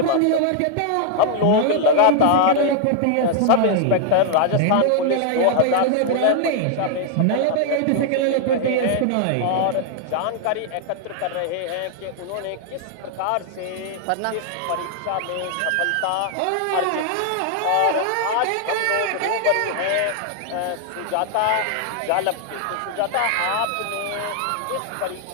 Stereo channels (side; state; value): both; different; correlation 0.00